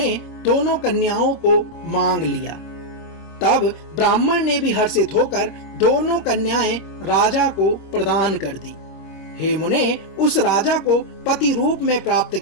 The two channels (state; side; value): late; right; 26 ms